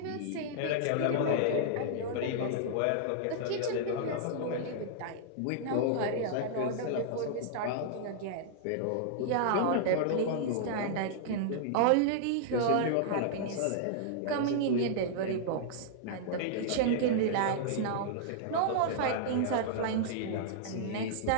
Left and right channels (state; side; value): different; both; correlation -0.01